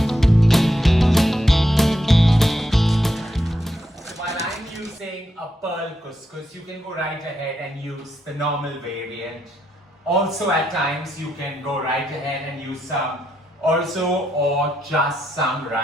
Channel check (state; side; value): normal; both; correlation 0.81